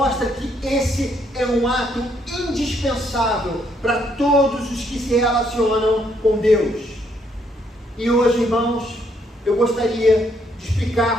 que esse é um ato indispensável para todos os que se relacionam com Deus. E hoje, irmãos, eu gostaria de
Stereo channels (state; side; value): normal; both; correlation 0.71